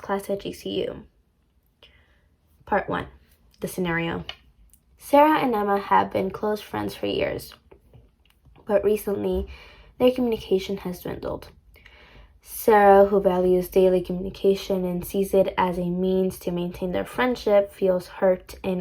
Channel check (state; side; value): identical; both; correlation 1.00